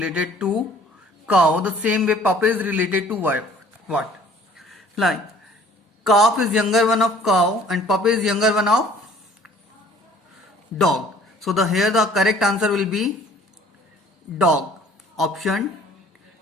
to cow. The same way puppy is related to what? Like calf is younger one of cow and puppy is younger one of dog. So here the correct answer will be dog. Option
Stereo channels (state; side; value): normal; both; correlation 0.54